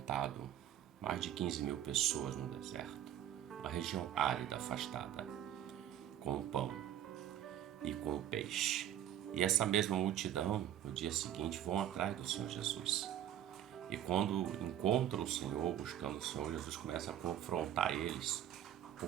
mais de 15 mil pessoas no deserto, uma região árida, afastada, com o pão e com o peixe. E essa mesma multidão, no dia seguinte, vão atrás do Senhor Jesus. E quando encontram o Senhor, buscando o Senhor, Jesus começa a confrontar eles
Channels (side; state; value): left; quieter; 11.2 dB